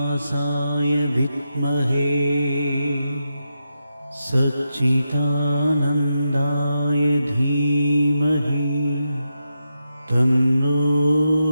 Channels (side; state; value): both; inverted; correlation -0.87